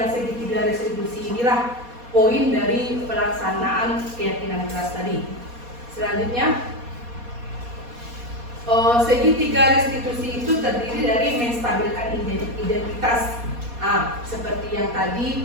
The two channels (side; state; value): left; late; 4.2 ms